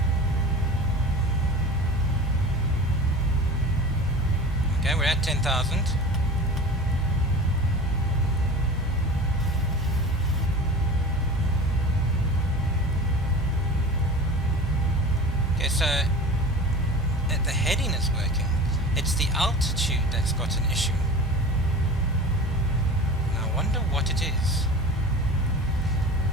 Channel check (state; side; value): normal; both; correlation 0.35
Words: Okay, we're at 10,000. Okay, so the heading is working. It's the altitude that's got an issue. And I wonder what it is.